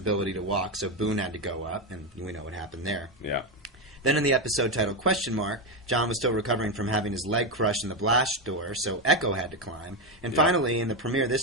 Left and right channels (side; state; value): both; normal; correlation 0.10